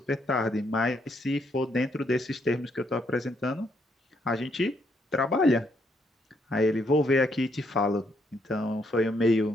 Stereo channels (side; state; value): both; normal; correlation 0.73